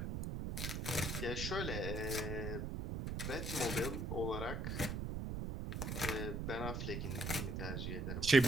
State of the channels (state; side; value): noise; right; rumble, 2 dB below the sound